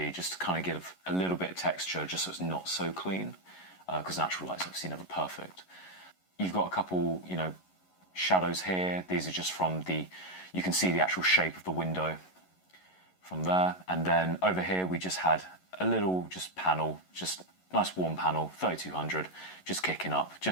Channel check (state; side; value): late; right; 11 ms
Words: just to kind of give a little bit of texture, just so it's not so clean, because natural light's obviously never perfect. You've got a couple, shadows here. These are just from you can see the actual shape of the window from there. And then over here we just had a little panel, just nice warm panel, 3200, just kicking up,